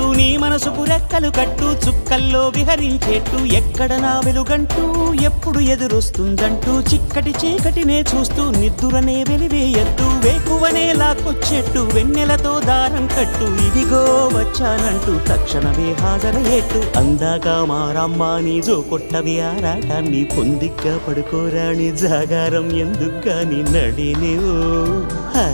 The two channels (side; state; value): both; inverted; correlation -1.00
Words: నీ మనసుకు రెక్కలు కట్టు చుక్కల్లో విహరించేట్టు ఎక్కడ నా వెలుగంటూ ఎప్పుడు ఎదురొస్తుందంటూ చిక్కటి చీకటినే చూస్తూ నిద్దురనే వెలివేయద్దు వేకువనే లాక్కొచ్చేట్టు వెన్నెలతో దారం కట్టు ఇదిగో వచ్చానంటూ తక్షణమే హాజరయ్యేట్టు అందాక మారమ్మ నీ జో కొట్టవి ఆరాటాన్ని పొందిగ్గా పడుకోరాని జాగారం ఎందుకుగాని నడినివో